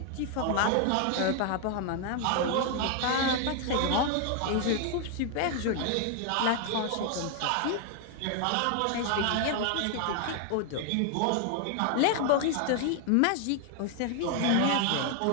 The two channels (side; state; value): both; different; correlation 0.00